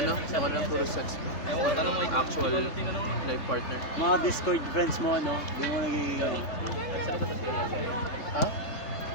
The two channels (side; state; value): right; late; 3.8 ms